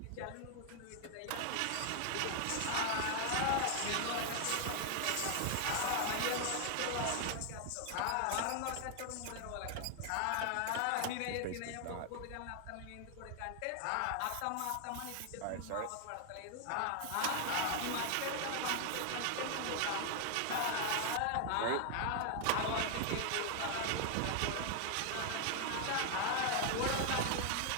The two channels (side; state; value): both; different; correlation 0.00